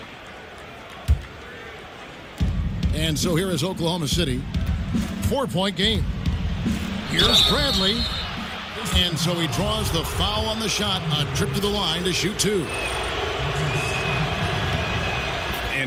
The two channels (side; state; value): both; identical; correlation 1.00